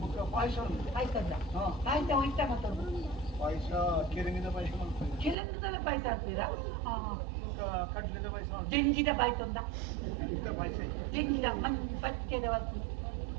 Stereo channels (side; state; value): left; drops out; at 5.4 s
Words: ಮುಖ ಪಾಯಸ ಉಂಟು ಆಯ್ತಲ್ಲ ಆಯ್ತಾ ಹೋಯ್ತಾ ಮತ್ತೊಂದು ಪಾಯಸ ಕೆರೆಂಗಿದ ಪಾಯಸ ಮಾಡ್ತಾರೆ ಚಿಲಂದದ ಪಾಯಸ ಹಾಕ್ತೀರಾ ಮುಖ ಕಡ್ಲಿದ ಪಾಯಸ ಮಾಡ್ತಾರೆ ಜಂಜಿದ ಪಾಯಸ ಉಂದ ಇಂಥ ಪಾಯಸ ಜಂಜಿದ ಮಂದಿ ಪಚ್ಚದ ವಸ್ತು